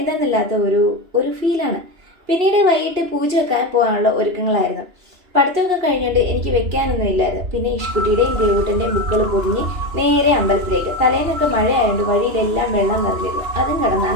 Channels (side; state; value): left; late; 2.9 ms